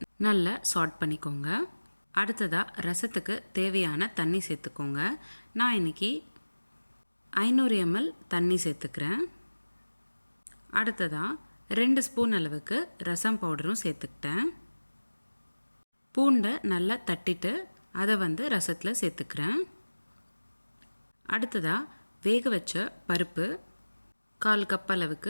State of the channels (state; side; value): inverted; both; correlation -1.00